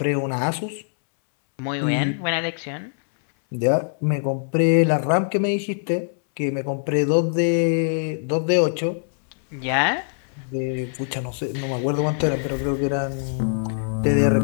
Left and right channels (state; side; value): silent; right; 64 dB below the other